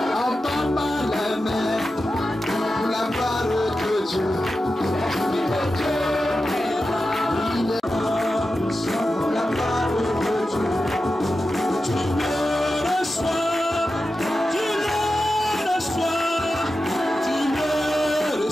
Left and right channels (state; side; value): normal; both; correlation 0.91